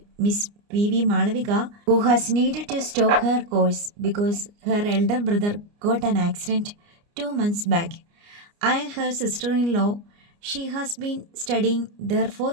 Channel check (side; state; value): left; late; 29 ms